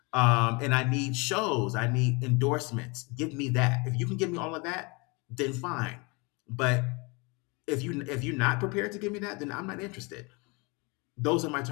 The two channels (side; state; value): right; quieter; 28.7 dB